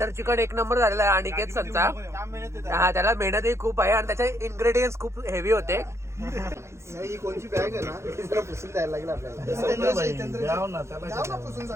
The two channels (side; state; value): left; late; 0.13 ms